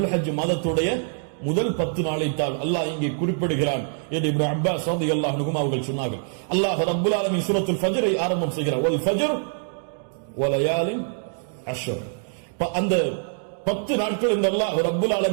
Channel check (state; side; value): silent; left; digital silence